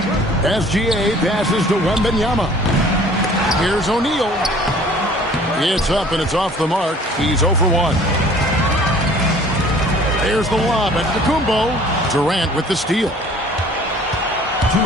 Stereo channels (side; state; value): both; normal; correlation 0.51